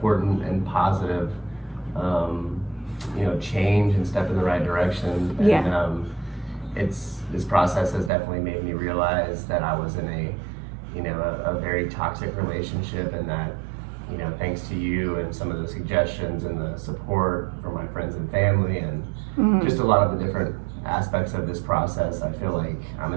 and positive, change and step in the right direction. Yeah. And this process has definitely made me realize that I was in a very toxic relationship, and that, thanks to you and some of the suggestions and the support from my friends and family and just a lot of the different aspects of this process, I feel like I'm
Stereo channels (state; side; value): drops out; left; at 8.1 s